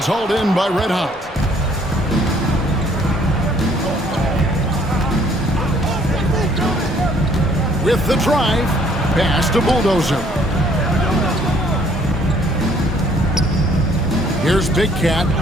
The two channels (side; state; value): both; normal; correlation 0.62